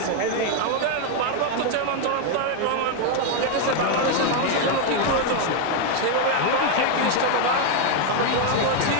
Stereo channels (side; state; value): both; different; correlation 0.01